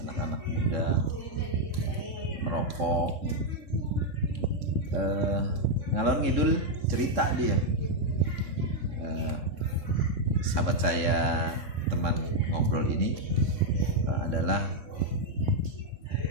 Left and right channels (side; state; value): left; late; 3.6 ms